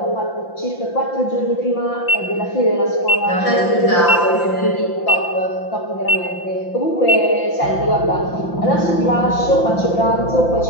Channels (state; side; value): late; right; 5.8 ms